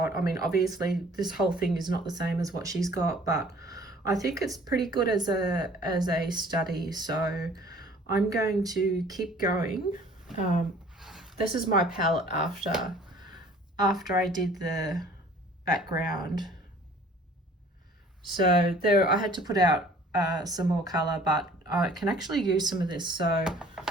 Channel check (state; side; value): normal; both; correlation 0.52